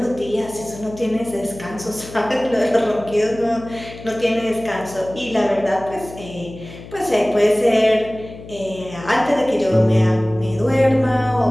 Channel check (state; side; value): noise; left; hum, 16 dB below the sound